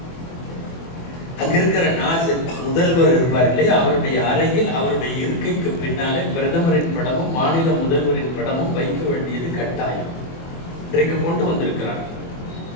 அங்க இருக்கிற நாசர் முதல்வர் இருப்பார் இல்லையா, அவருடைய அறையில் அவருடைய இருக்கைக்கு பின்னாலே பிரதமரின் படமும் மாநில முதல்வரின் படமும் வைக்க வேண்டியது கட்டாயம். இன்றைக்கு கொண்டு வந்திருக்கிறார்.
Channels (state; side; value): late; right; 24 ms